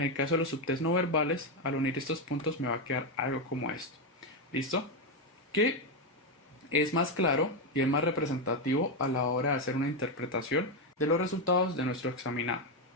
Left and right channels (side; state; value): both; normal; correlation 0.07